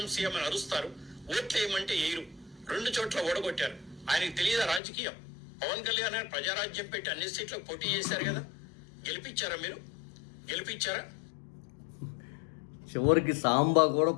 సీఎం అని అరుస్తారు. ఓట్లు వేయమంటే వేయరు. 2 చోట్ల ఓడగొట్టారు. ఆయనకి తెలియదా రాజకీయం? పవన్ కళ్యాణ్ గారు ప్రజారాజ్యం పెట్టి అన్ని సీట్లకు పోటీ చేశారు కదా. గెలిపించారా? మీరు గెలిపించారా? చివరికి సాంబా కూడా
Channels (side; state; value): right; drops out; at 4.8 s